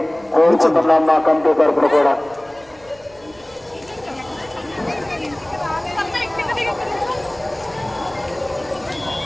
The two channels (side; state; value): right; noise; rumble, 27 dB below the sound